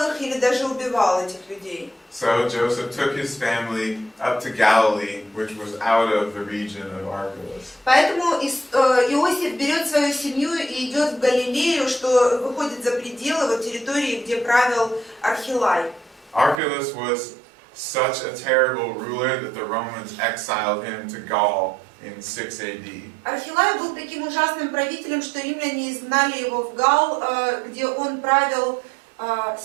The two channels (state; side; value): drops out; left; at 16.6 s